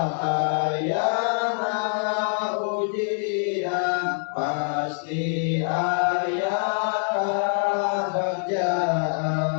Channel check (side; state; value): right; silent; digital silence